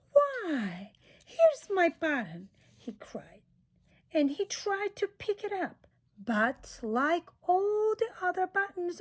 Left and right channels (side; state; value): both; identical; correlation 1.00